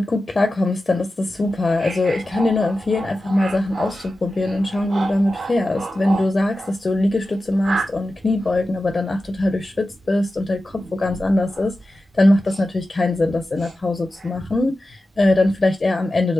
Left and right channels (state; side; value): normal; both; correlation 0.93